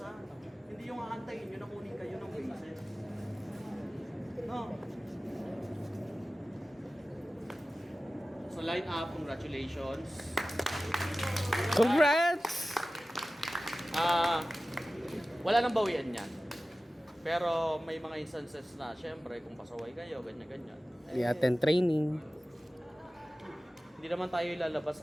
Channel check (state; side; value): normal; both; correlation 0.96